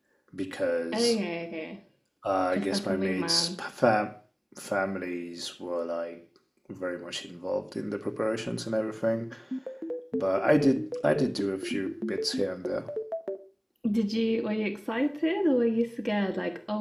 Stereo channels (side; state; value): both; identical; correlation 1.00